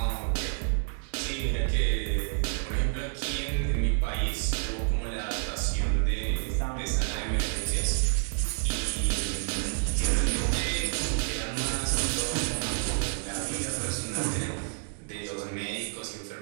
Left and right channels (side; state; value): left; silent; 58 dB below the other